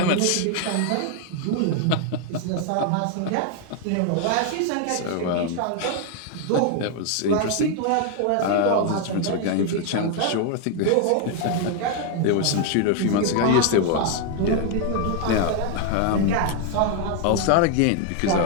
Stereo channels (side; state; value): both; different; correlation 0.00